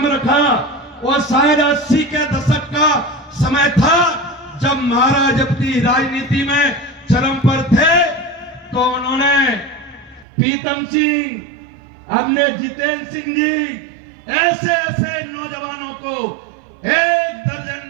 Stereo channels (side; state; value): left; drops out; at 10.2 s